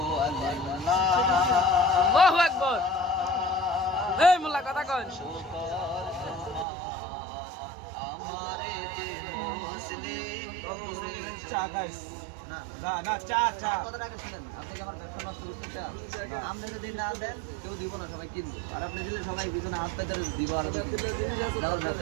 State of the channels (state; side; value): drops out; left; at 6.7 s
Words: আল্লাহ আল্লাহু আকবার এই মোল্লা কথা কন আমারে যে মুসলিম করেছো চা গাইস না না চা চা কথাটা আগে শুনেন আপনি কি আমার ব্যবসা নষ্ট করতে চান আপনি যদি না দেন কেউ দিব না সবাই কিনবে আর আপনি দিলে সবাই পিছনে হাত পেতে দিব আর আমার